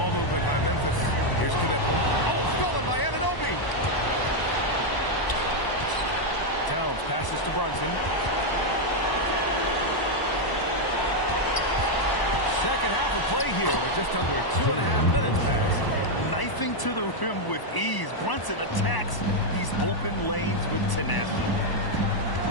movement by Memphis. Here's Knipple. Oh, stolen by Anunoby. Towns passes to Brunson. Second half of play here with just under 2.5 minutes passed. Knifing to the rim with ease. Brunson attacks these open lanes with tenacity.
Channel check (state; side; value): late; right; 1.0 ms